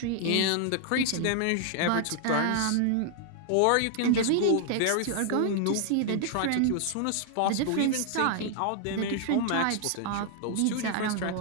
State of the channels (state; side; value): different; both; correlation 0.00